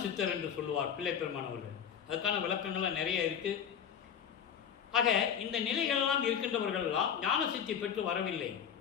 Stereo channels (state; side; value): quieter; right; 8.3 dB